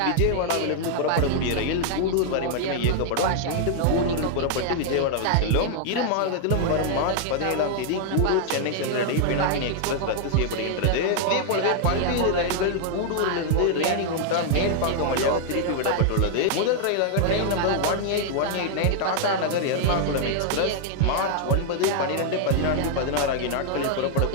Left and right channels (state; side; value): different; both; correlation 0.00